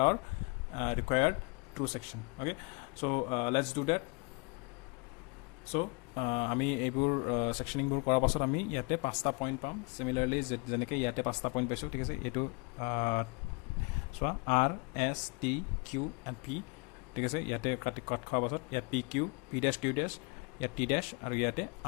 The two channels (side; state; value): right; quieter; 31.3 dB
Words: our required true section okay so let's do that so আমি এইবোৰ সেকশনিংবোৰ কৰাৰ পাছত আমি ইয়াতে 5টা point পাম সিমিলাৰলি যেনেকৈ ইয়াতে 5টা পইণ্ট পাইছোঁ ঠিক আছে এইটো চোৱা R S T Q and P ঠিক আছে ইয়াতে কাট খোৱাৰ পাছত ইয়াত P Q P dash Q dash ইয়াত T dash আৰু ইয়াতে